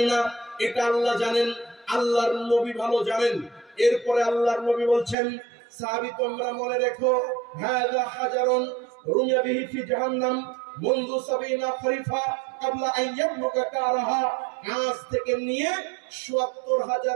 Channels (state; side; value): drops out; left; at 5.2 s